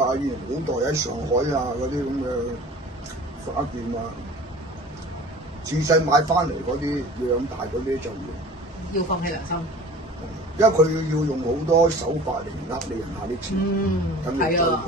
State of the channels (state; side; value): normal; both; correlation 0.43